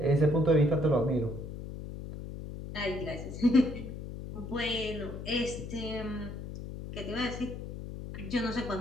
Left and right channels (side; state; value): left; noise; hum, 9 dB below the sound